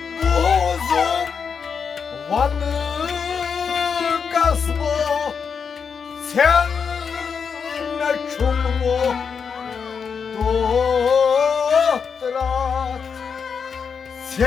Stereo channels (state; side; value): quieter; right; 6.2 dB